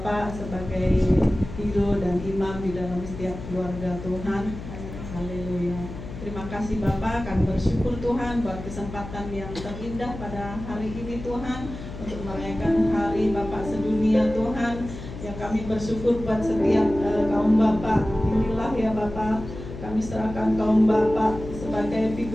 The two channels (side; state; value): left; noise; hum, 11 dB below the sound